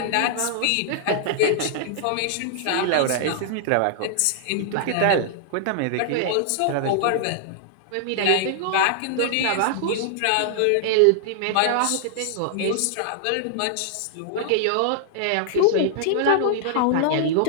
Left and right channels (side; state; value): both; different; correlation -0.01